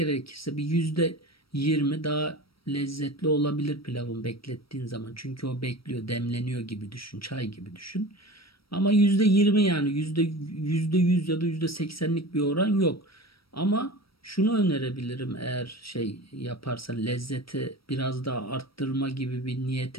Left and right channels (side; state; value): right; late; 0.75 ms